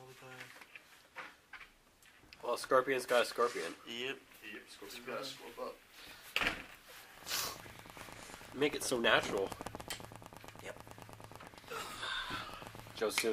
all the time. Well, Scorpion's got a scorpion. Yep. Scorpion's got to swoop up. Make it so natural. Yep.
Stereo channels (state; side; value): identical; both; correlation 1.00